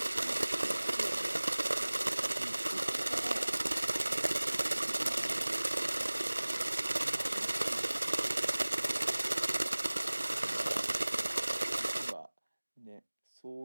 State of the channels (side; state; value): both; inverted; correlation -1.00